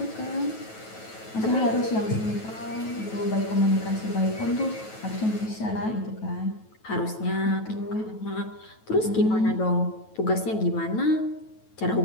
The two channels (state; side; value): late; right; 9.2 ms